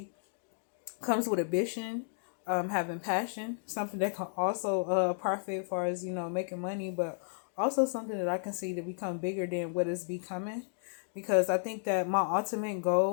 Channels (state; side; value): silent; right; digital silence